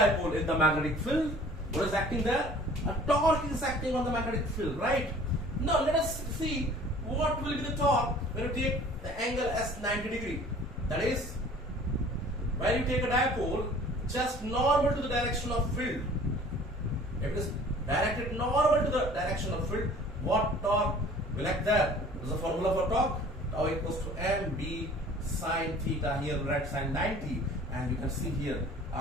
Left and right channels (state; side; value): normal; both; correlation 0.49